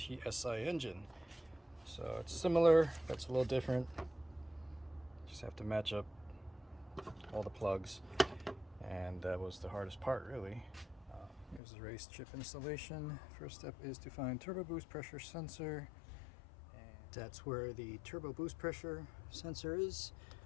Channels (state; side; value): drops out; right; at 11.6 s